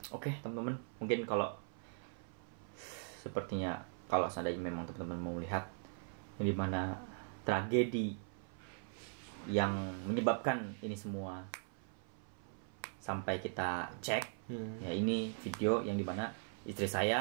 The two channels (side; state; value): left; silent; 51 dB below the other